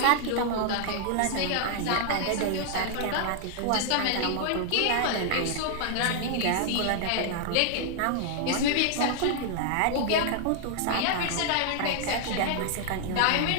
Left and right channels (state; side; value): different; both; correlation 0.00